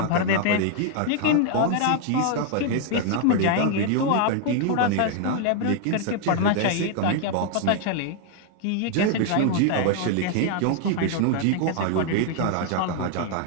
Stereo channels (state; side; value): different; both; correlation 0.00